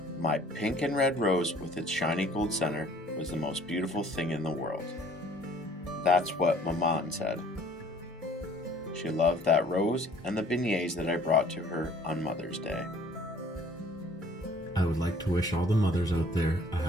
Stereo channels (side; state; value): both; normal; correlation 0.55